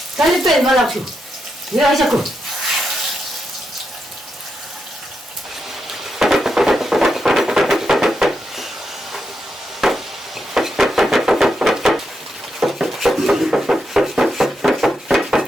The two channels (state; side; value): normal; both; correlation 0.84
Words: Dale pe, mă lac. Ia aici acum.